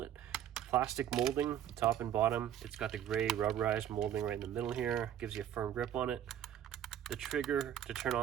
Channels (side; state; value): left; quieter; 10.4 dB